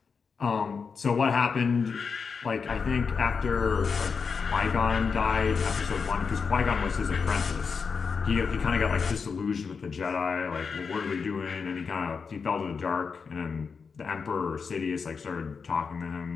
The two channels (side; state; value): right; quieter; 5.5 dB